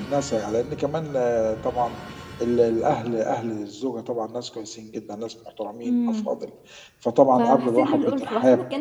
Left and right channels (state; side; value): identical; both; correlation 1.00